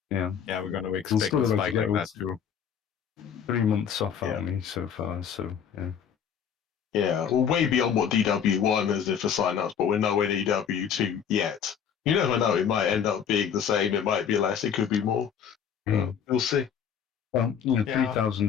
Yeah, we're going to We'll expect still a have to spike get like that too. 3 months off Yeah. army so far, so yeah. Yeah, well, way beyond what DW1 is for sign-ups, but we're nowhere near DW2 yet. You never know, it might end up being the same, it might be less, it could be more. We'll see. Well, Yeah.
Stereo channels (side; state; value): right; quieter; 7.9 dB